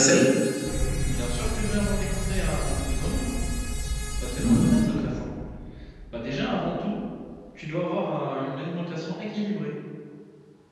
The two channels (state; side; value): identical; both; correlation 1.00